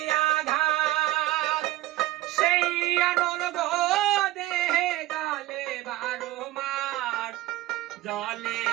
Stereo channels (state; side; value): quieter; left; 16.9 dB